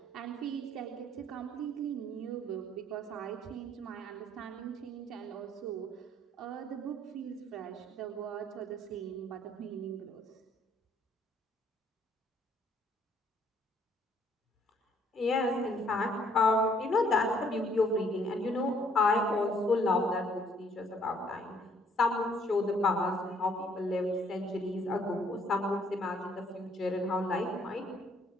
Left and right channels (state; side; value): normal; both; correlation 0.64